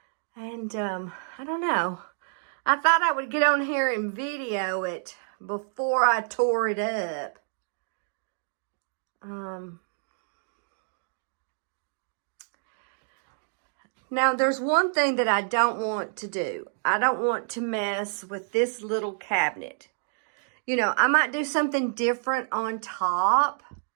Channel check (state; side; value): silent; left; digital silence